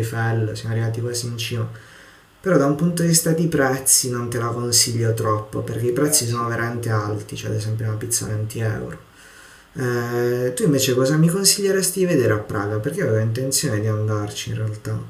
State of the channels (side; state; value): both; identical; correlation 1.00